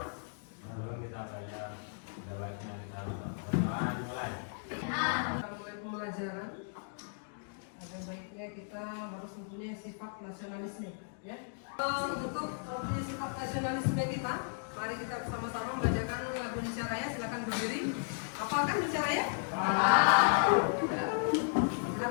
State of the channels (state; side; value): silent; right; digital silence